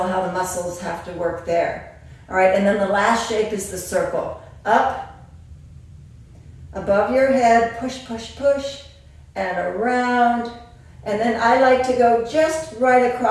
how the muscles have to work there. All right, and then the last shape is the circle. Up, above your head, push, push, push, and around. And then I like to go just right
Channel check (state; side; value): identical; both; correlation 1.00